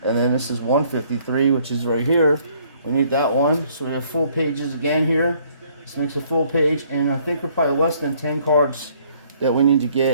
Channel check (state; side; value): inverted; both; correlation -0.63